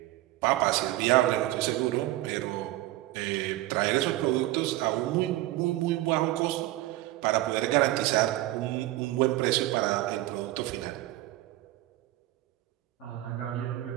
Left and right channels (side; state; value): left; quieter; 16.5 dB